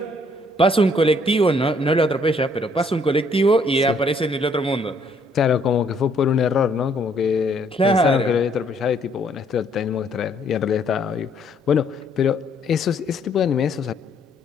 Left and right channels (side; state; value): both; normal; correlation 0.66